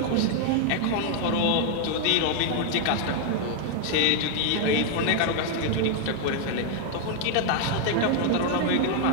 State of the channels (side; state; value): both; different; correlation 0.00